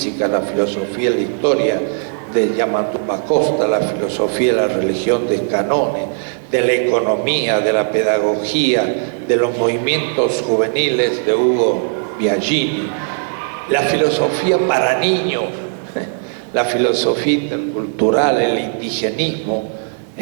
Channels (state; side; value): silent; left; digital silence